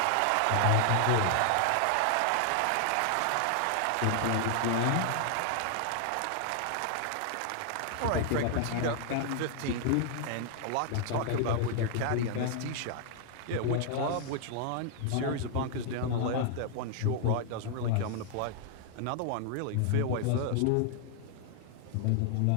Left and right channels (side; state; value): both; different; correlation 0.00